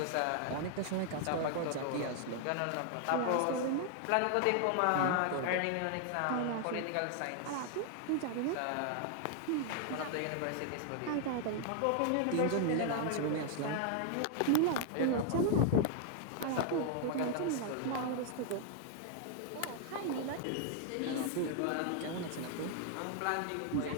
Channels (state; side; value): different; both; correlation 0.00